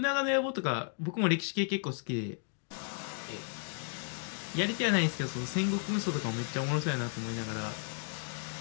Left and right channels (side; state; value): right; silent; 55 dB below the other